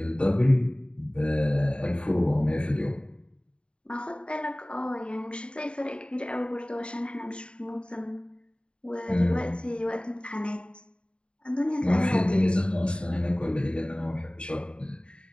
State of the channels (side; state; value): right; late; 0.054 ms